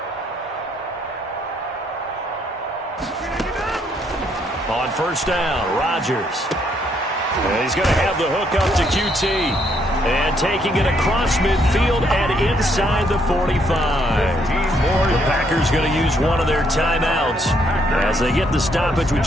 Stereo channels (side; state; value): both; normal; correlation 0.71